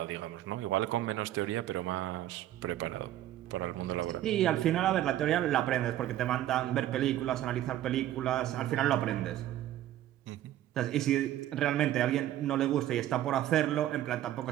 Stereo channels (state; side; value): quieter; left; 13.0 dB